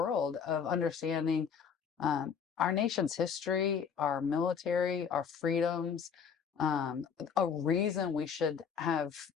of understanding our nation's history, our military, our freedoms, a reason we should have,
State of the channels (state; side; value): quieter; right; 6.8 dB